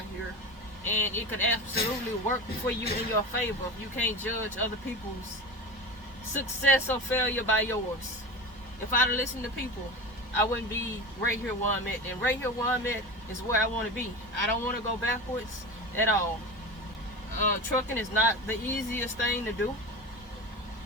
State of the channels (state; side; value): normal; both; correlation 0.27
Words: here, and it could absolutely work for you in your favor. You can't judge other people's success or failure by yours. If I'd have listened to people, I wouldn't be right here where I'm at. And right here where I'm at is where I want to be. I don't want to go backwards at all. Trucking is not the easiest thing to do.